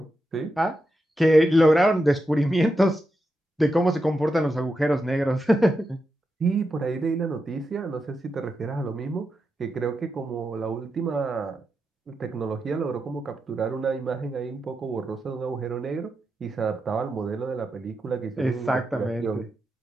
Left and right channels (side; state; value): both; normal; correlation 0.87